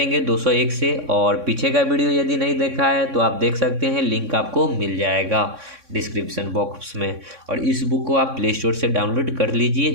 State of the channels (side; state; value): left; late; 3.6 ms